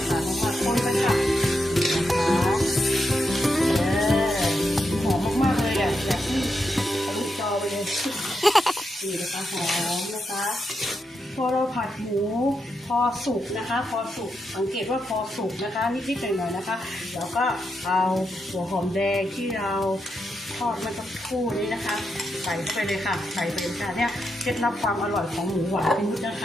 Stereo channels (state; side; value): normal; both; correlation 0.84